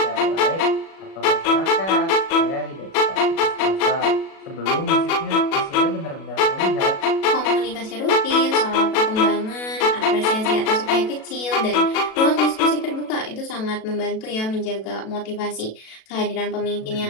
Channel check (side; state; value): right; late; 37 ms